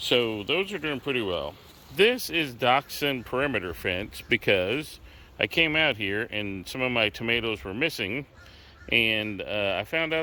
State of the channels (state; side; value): identical; both; correlation 1.00